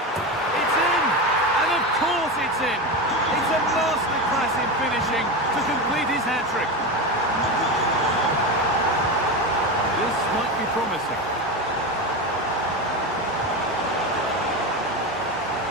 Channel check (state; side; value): normal; both; correlation 0.19